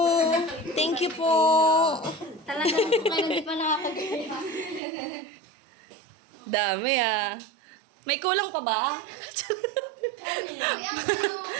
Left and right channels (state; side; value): drops out; left; at 4.8 s